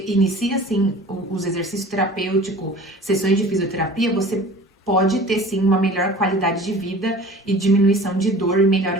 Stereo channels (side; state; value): both; normal; correlation 0.43